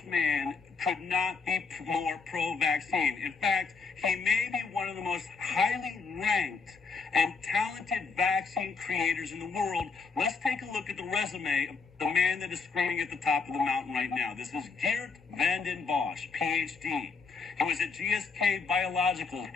man could not be more pro-vaccine. In fact, he may be one of the most highly ranked and talented vaccine creators in the world. Let's take a look at the resume of the man that is screaming at the top of the mountain right now. This is Geert Vanden Bossche, PhD. He was at GSK Biologicals,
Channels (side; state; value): right; quieter; 4.7 dB